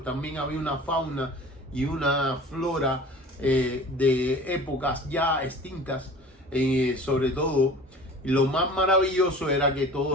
también había una fauna y una flora de épocas ya extintas, sobre todo. Y lo más maravilloso era que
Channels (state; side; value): normal; both; correlation 0.42